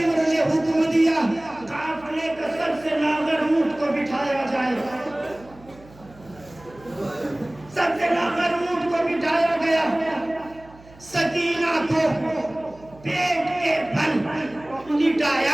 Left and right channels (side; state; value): right; noise; hum, 23 dB below the sound